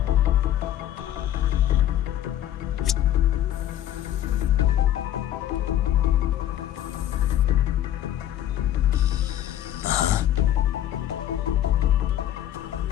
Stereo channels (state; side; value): quieter; right; 12.1 dB